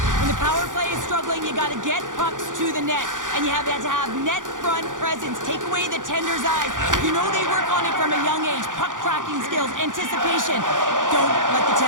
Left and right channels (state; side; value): late; left; 0.88 ms